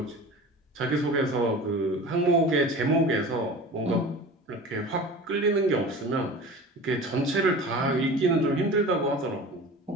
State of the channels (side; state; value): both; normal; correlation 0.37